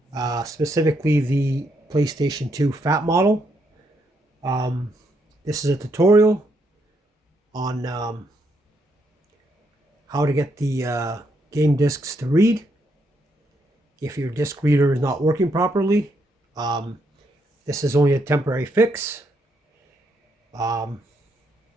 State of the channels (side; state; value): both; normal; correlation 0.76